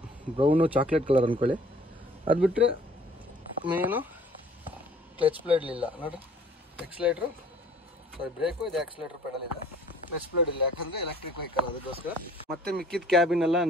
ಬ್ರೌನು ಚಾಕ್ಲೇಟ್ ಕಲರ್ ಅಂದ್ಕೊಳ್ಳಿ. ಅದು ಬಿಟ್ಟರೆ ಮೇನು ಕ್ಲಚ್ ಪ್ಲೇಟ್ ಇಲ್ಲ ನೋಡಿರಿ. ಎಕ್ಸ್ಲೇಟ್ರು ಬ್ರೇಕು, ಇದು ಆಕ್ಸಿಲೇಟ್ರ್ ಪೆಡಲ್ ಇದೆ. ಕ್ಲಚ್ ಪ್ಲೇಟ್ ಇಲ್ಲ, ಯಾಕಂದರೆ ಎಲೆಕ್ಟ್ರಿಕ್ ವೆಹಿಕಲ್, ಅದಕ್ಕೋಸ್ಕರ. ಮತ್ತೆ ಮಿಕ್ಕಿದ ಕ್ಯಾಬಿನ್ ಎಲ್ಲ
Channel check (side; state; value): both; normal; correlation 0.54